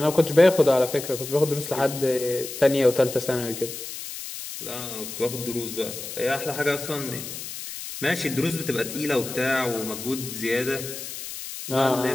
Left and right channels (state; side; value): noise; left; hiss, 9 dB below the sound